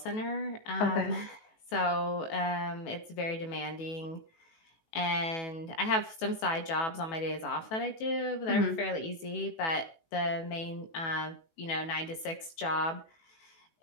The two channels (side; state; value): right; late; 18 ms